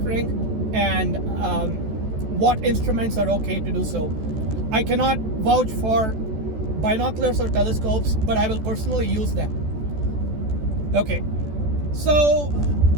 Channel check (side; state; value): left; late; 14 ms